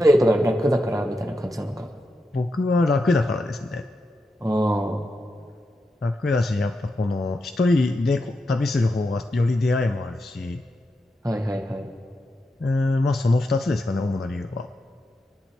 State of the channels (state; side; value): normal; both; correlation 0.86